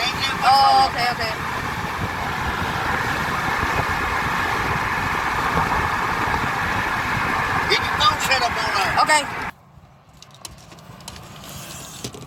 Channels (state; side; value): identical; both; correlation 1.00